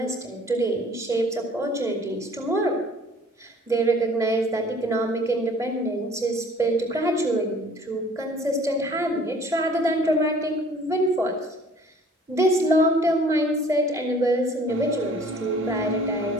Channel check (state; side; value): normal; both; correlation 0.53